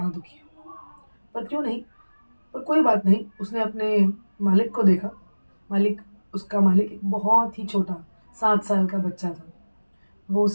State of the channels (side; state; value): both; inverted; correlation -1.00